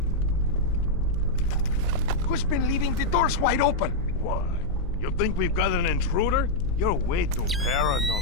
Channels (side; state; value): left; noise; hum, 8 dB below the sound